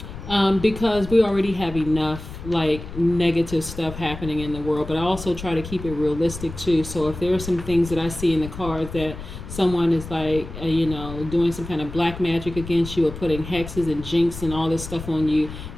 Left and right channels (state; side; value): noise; left; rumble, 11 dB below the sound